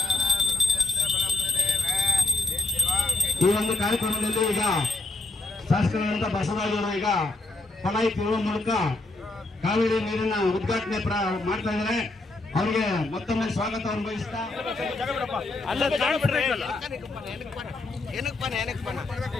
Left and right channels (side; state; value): right; quieter; 3.0 dB